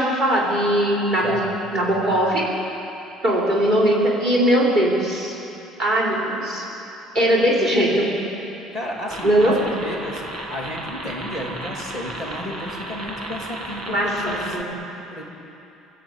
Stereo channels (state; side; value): normal; both; correlation 0.57